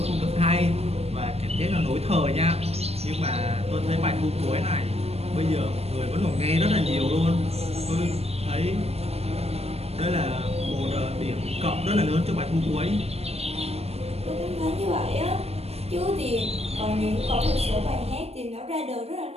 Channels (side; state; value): left; late; 0.30 ms